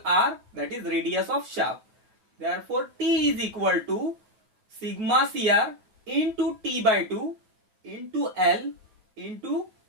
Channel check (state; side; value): late; left; 9.2 ms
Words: r, that is radius of shaft. Therefore T is equal to sigma CR into T by 2 into L into